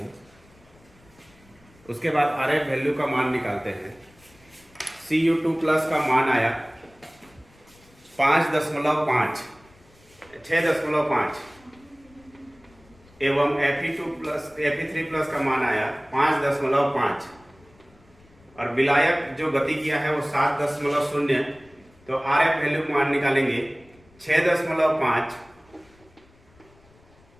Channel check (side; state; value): left; noise; rumble, 29 dB below the sound